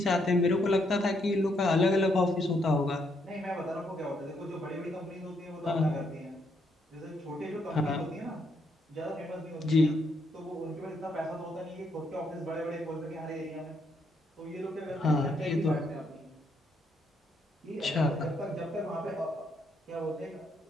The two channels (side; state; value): both; normal; correlation 0.75